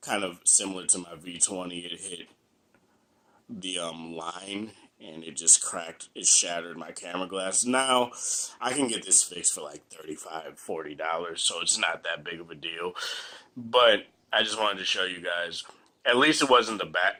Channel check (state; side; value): identical; both; correlation 1.00